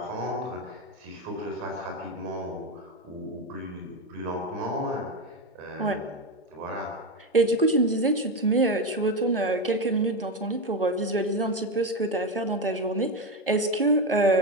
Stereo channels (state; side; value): normal; both; correlation 0.14